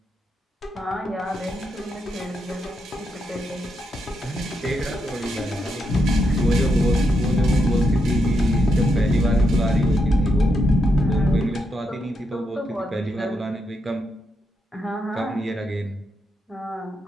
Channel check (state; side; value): normal; both; correlation 0.82